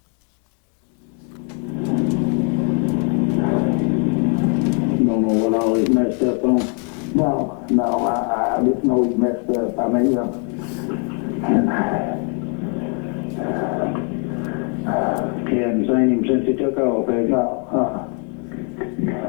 Don't know what all he's messed up on. No, I just know he's messed up. I mean, You haven't seen him since he took off, have you?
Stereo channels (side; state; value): right; quieter; 39.9 dB